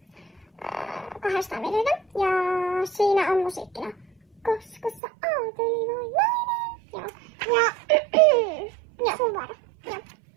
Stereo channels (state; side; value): drops out; left; at 5.0 s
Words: 200 videota. Ja siinä on musiikkina. Koska sä oot ylivoimainen. Joo. Ja sun vuoro. Joo.